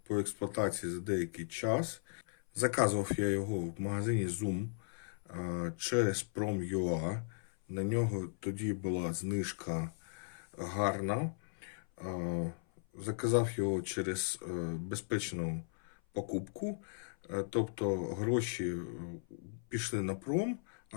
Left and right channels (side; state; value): right; silent; 53 dB below the other